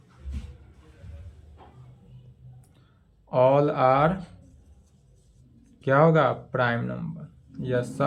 ... ऑल आर क्या होगा, प्राइम नंबर। यह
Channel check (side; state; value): both; identical; correlation 1.00